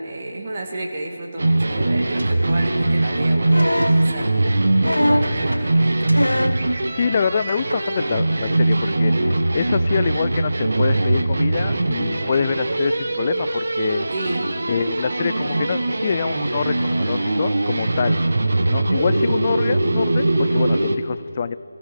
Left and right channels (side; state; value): both; inverted; correlation -0.93